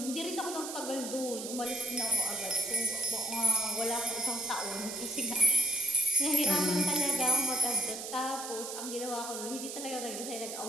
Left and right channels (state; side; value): noise; right; hiss, 8 dB below the sound